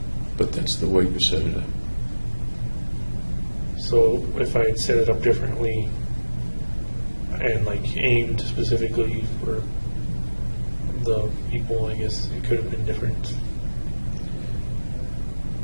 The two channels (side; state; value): both; inverted; correlation -1.00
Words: But that's the way you set it up. So if I had set it up differently and like aimed specifically for the people, I guess it could have been different.